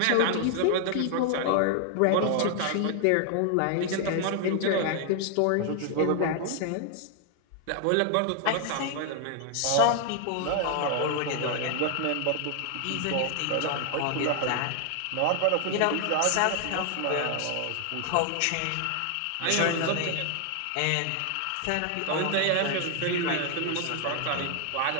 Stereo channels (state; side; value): different; both; correlation 0.00